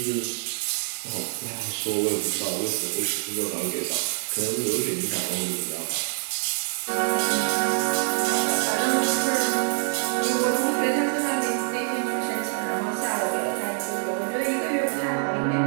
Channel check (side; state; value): left; silent; digital silence